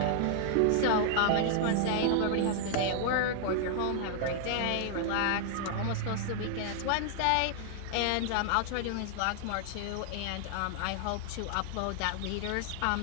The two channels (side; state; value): both; different; correlation -0.01